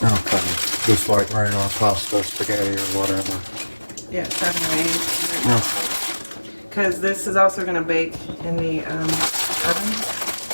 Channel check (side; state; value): both; inverted; correlation -1.00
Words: Okay. Just like regular pasta, spaghetti, or whatever. Yeah, 7 or 8 minutes. Okay. Because this is also going to bake in the oven.